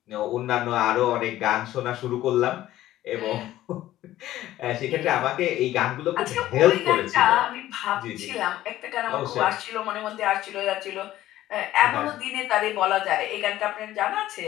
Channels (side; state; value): right; quieter; 14.3 dB